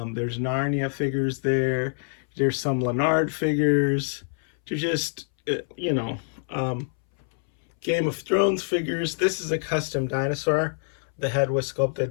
Narnia figures there. There's some Leonard figures. There's just, Game of Thrones figures. This is a custom dinosaur. The head was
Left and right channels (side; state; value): right; silent; 61 dB below the other